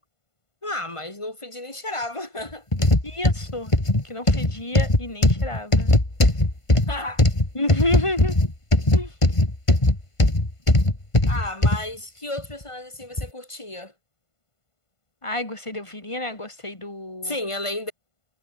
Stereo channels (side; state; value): right; late; 1.5 ms